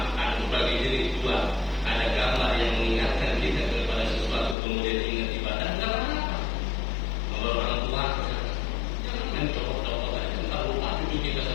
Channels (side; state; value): right; drops out; at 4.5 s